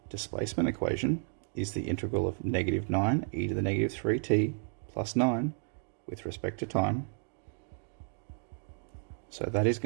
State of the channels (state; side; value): silent; left; 56 dB below the other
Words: displacement equation is the integral of negative 9 e to the negative 3t plus 9 with respect to time. So that is